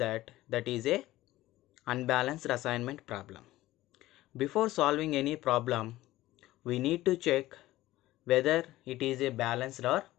is a unbalanced assignment problem. Before solving any problem, we need to check whether it is a balanced or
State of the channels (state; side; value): quieter; right; 16.5 dB